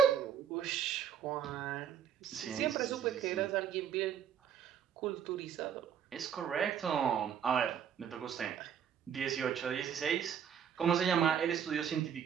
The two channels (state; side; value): quieter; left; 8.4 dB